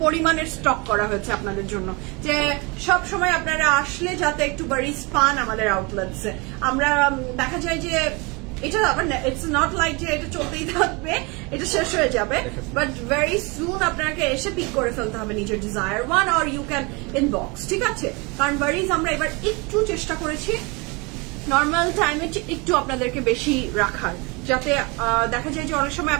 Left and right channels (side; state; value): left; quieter; 28.0 dB